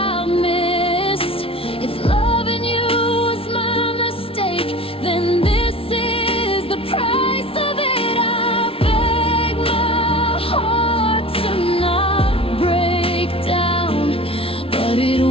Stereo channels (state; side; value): late; right; 0.26 ms